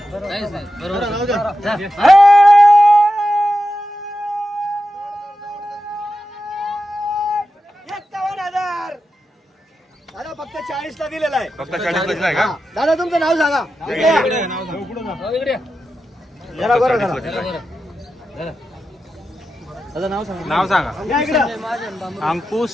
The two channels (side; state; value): both; normal; correlation 0.90